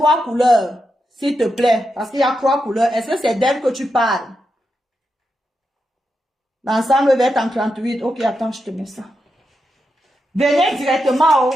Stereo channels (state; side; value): normal; both; correlation 0.86